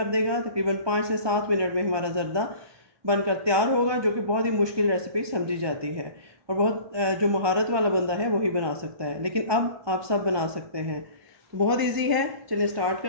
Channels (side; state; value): left; late; 1.2 ms